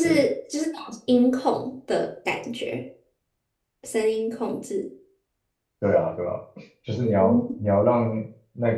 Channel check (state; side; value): identical; both; correlation 1.00